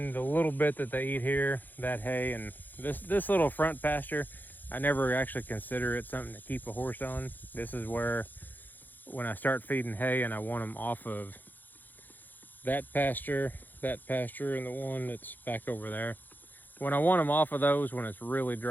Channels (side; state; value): right; late; 0.087 ms